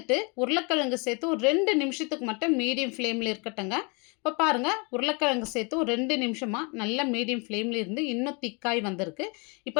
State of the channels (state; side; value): quieter; right; 31.9 dB